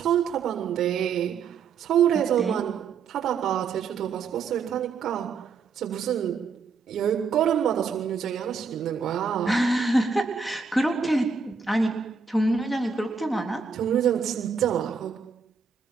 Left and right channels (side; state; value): left; quieter; 5.5 dB